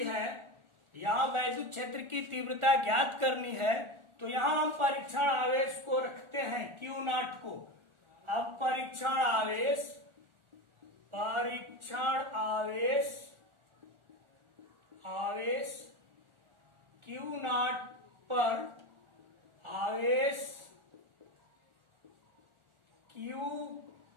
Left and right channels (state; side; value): late; left; 1.4 ms